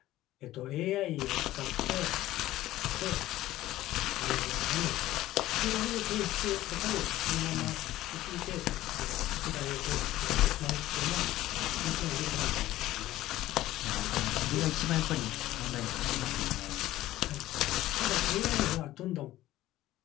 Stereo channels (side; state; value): right; quieter; 15.3 dB